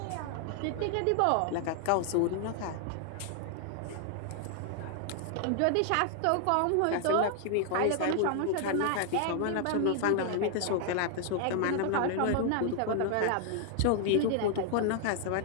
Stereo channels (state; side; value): different; both; correlation 0.00